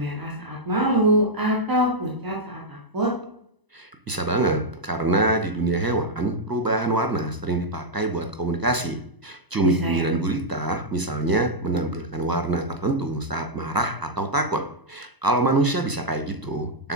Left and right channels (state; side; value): late; left; 1.0 ms